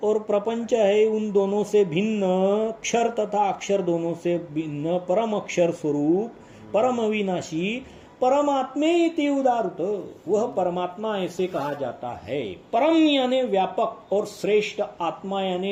और प्रपंच है उन दोनों से भिन्न, अक्षर तथा अक्षर दोनों से भिन्न परम अक्षर स्वरूप, परम अविनाशी परमात्मे इति उदाहृत, वह परमात्मा ऐसे कहा जाता है। परम यानी व्यापक और श्रेष्ठ, आत्मा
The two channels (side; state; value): both; identical; correlation 1.00